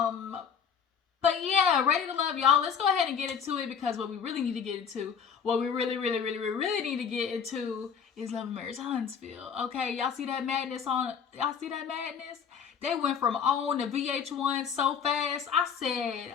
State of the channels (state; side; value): quieter; right; 7.0 dB